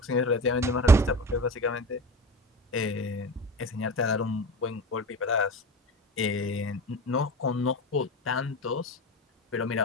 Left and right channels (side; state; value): both; normal; correlation 0.32